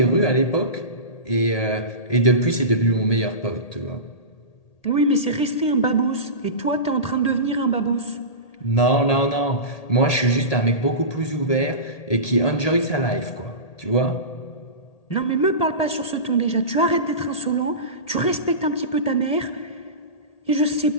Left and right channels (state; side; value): late; right; 1.8 ms